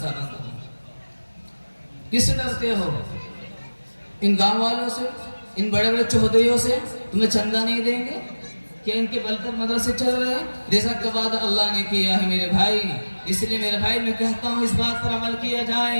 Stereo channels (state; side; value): inverted; both; correlation -1.00